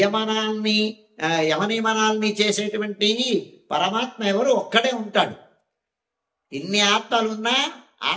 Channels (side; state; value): both; identical; correlation 1.00